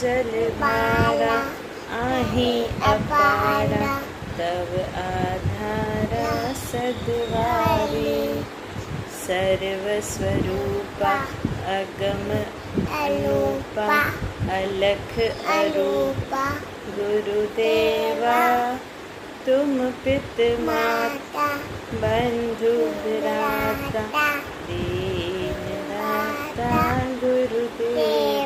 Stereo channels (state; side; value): identical; both; correlation 1.00